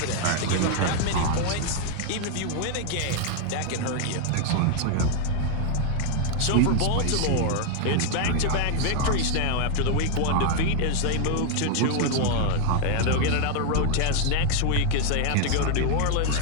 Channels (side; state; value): both; different; correlation 0.00